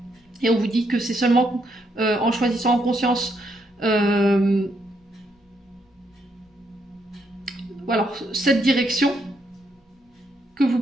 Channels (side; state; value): both; normal; correlation 0.76